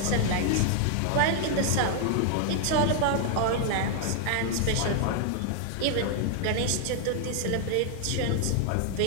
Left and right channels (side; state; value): both; different; correlation 0.00